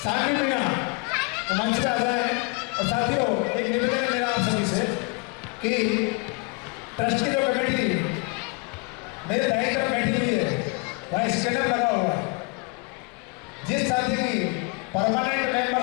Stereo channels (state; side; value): quieter; right; 28.9 dB